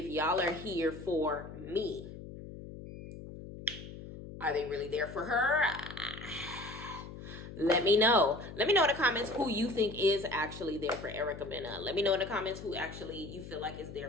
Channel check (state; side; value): noise; left; hum, 12 dB below the sound